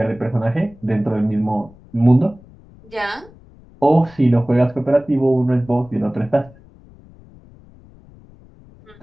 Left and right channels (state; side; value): noise; left; rumble, 24 dB below the sound